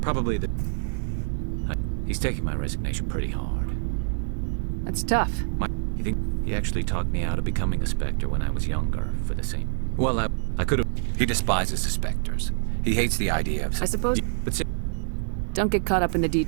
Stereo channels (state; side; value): silent; left; digital silence